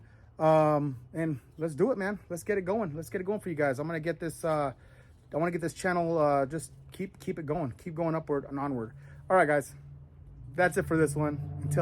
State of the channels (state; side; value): identical; both; correlation 1.00